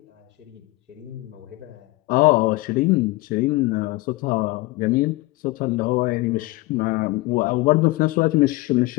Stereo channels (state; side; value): quieter; right; 20.9 dB